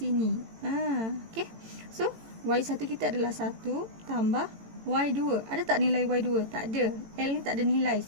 Okay. So Y1 kita adalah 1 tambah Y2. Ada tak nilai Y2? Tak ada. L ni tak ada nilai.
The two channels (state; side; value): late; left; 18 ms